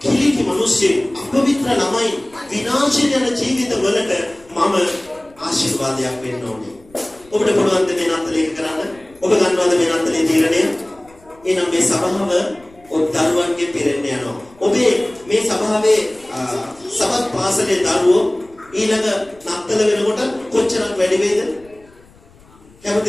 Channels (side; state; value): left; noise; rumble, 27 dB below the sound